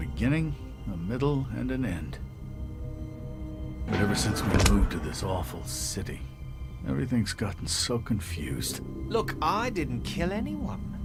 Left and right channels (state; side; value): identical; both; correlation 1.00